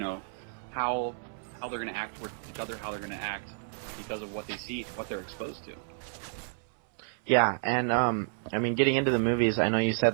how they're going to act towards each other, how they're going to act because of what they see, what they're exposed to. Yeah, and getting into the movies, I know you said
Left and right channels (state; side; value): silent; left; 57 dB below the other